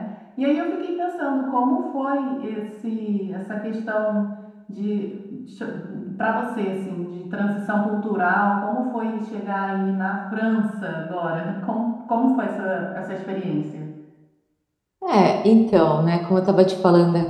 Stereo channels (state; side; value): identical; both; correlation 1.00